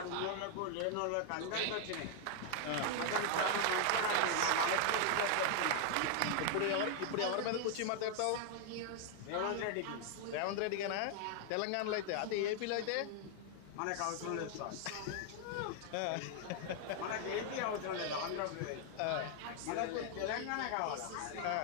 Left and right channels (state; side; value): different; both; correlation 0.00